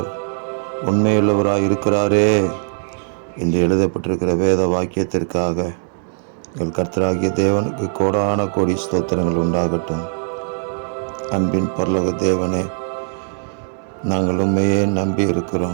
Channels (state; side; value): silent; left; 66 dB below the other